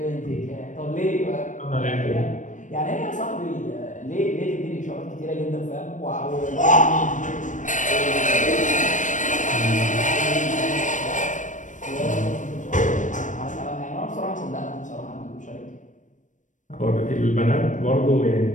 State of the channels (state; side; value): late; right; 0.37 ms